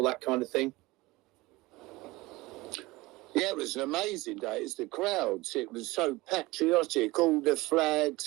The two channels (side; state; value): left; quieter; 21.0 dB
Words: that kind of thing. Yeah, it was an amazing day. It's the crowds. It was so patriotic. All the